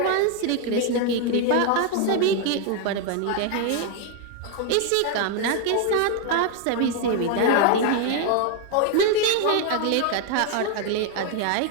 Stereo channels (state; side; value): different; both; correlation 0.01